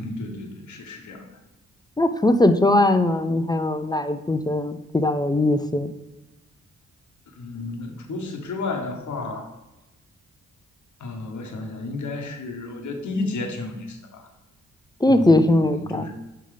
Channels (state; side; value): normal; both; correlation 0.75